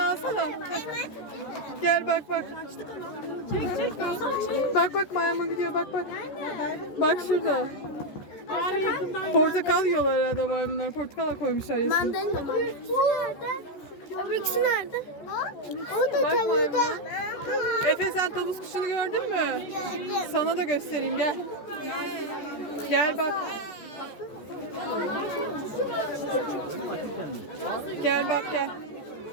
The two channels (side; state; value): right; late; 14 ms